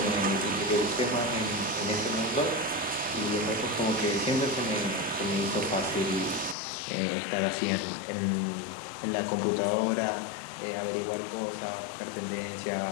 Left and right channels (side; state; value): right; drops out; at 6.6 s